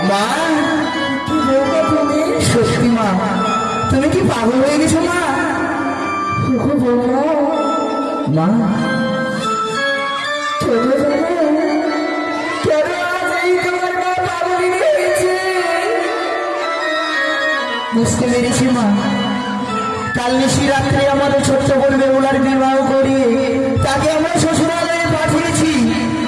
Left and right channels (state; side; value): identical; both; correlation 1.00